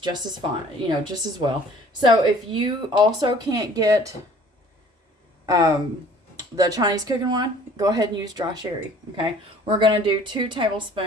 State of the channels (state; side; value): normal; both; correlation 0.52